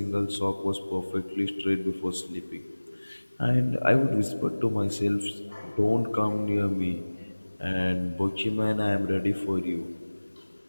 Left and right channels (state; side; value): inverted; both; correlation -1.00